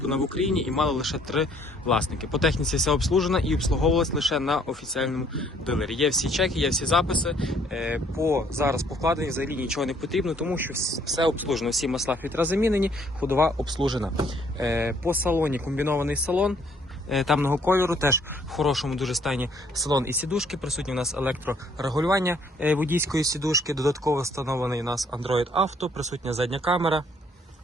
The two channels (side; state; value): both; normal; correlation 0.63